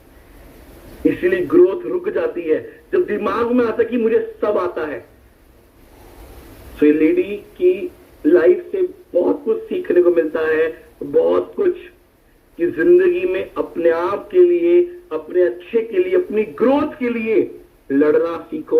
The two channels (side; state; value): both; identical; correlation 1.00